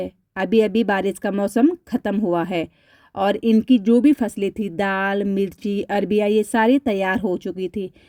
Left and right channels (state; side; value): identical; both; correlation 1.00